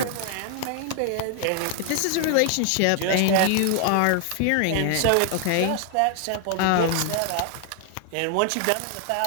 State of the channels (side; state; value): both; different; correlation 0.00